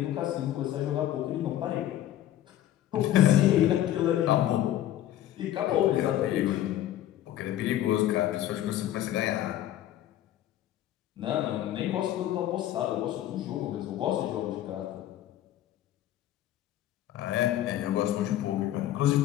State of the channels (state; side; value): quieter; right; 12.7 dB